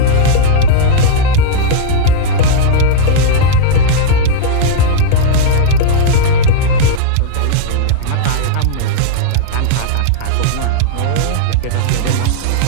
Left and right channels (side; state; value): both; different; correlation -0.02